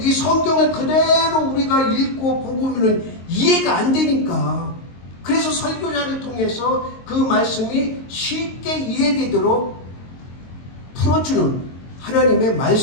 이 성경을 그대로 우리가 읽고 보고는 이해가 안 되니까. 그래서 설교자를 통해서 그 말씀이 쉽게 이해되도록 풀어주는 하나님의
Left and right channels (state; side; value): late; right; 22 ms